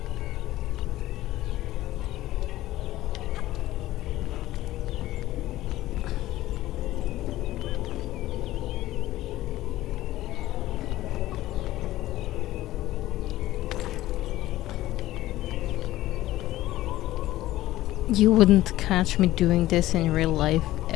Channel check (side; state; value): right; quieter; 15.6 dB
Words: You wouldn't catch me doing this in real life